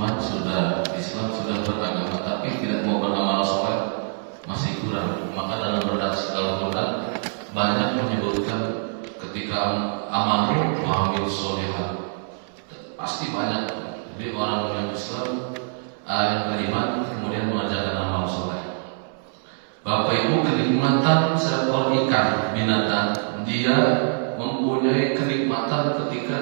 sudah beragama, tapi tidak mau beramal soleh, masih kurang. Maka dalam Al-Quran banyak menyebutkan ketika amalu wa amil solihat, pasti banyak. Jadi orang yang Islam, yang beriman, kemudian mengerjakan amal soleh. Bapak Ibu, kenikmatan seekor ikan binatang, dia mempunyai kenikmatan ketika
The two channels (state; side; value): silent; left; 62 dB below the other